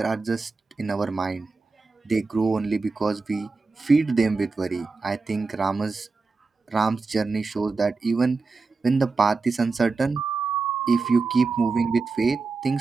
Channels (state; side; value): quieter; left; 4.1 dB